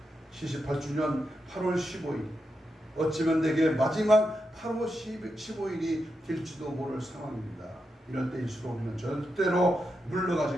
78주년 8월 15일 어찌면 내게 마지막 8월 15일이 될지도 모를 상황입니다. 이럴 때일수록 우리는 절대로 물러가지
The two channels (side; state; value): both; normal; correlation 0.86